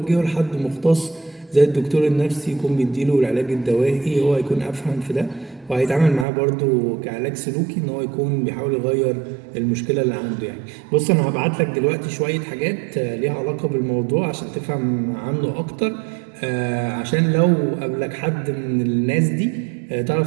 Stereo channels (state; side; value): drops out; left; at 6.2 s